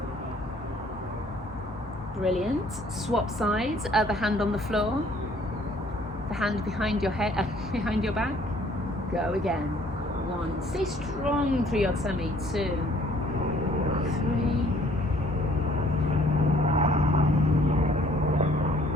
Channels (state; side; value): normal; both; correlation 0.59